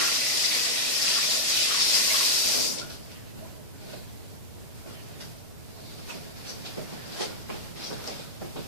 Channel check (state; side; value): normal; both; correlation -0.02